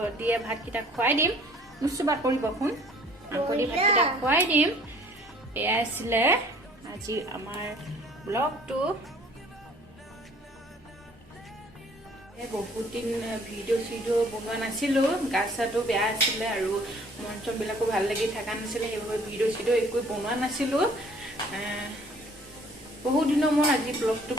দিয়ে ভাতকেইটা খুৱাই দিম নুচুবা কৰিব শুন মাংস দি ভাতকেইটা খুৱাই দিম এয়া আছিলে আজি আমাৰ ব্লগটো বহুত দিন ভিডিঅ' বনোৱা নাছিলোঁ গা চাটো বেয়া আছিলে আৰু মন চনবিলাকো ভাল লাগি থকা নাছিলে সেইবাবে ভিডিঅ' একো বনোৱা নাছিলোঁ বহুত দিনৰ মই আজি ব্লগটো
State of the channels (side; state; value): both; normal; correlation 0.55